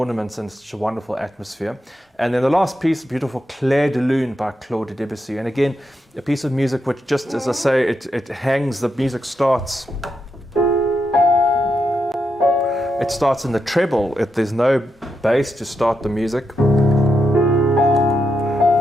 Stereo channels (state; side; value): normal; both; correlation 0.83